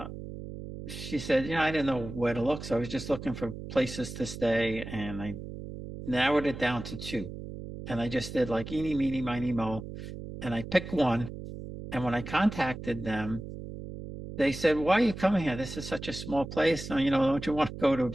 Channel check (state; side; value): noise; right; hum, 10 dB below the sound